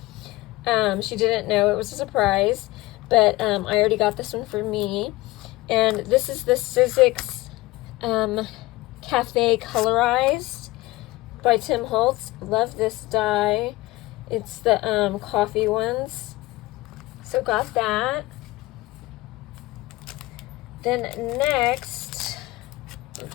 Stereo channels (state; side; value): quieter; right; 19.7 dB